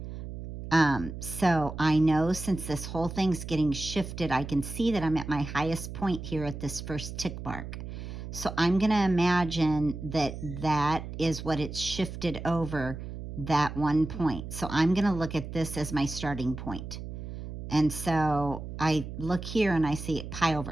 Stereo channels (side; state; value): right; noise; hum, 9 dB below the sound